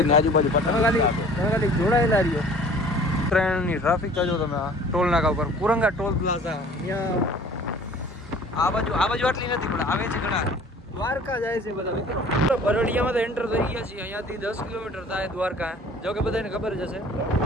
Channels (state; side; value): normal; both; correlation 0.49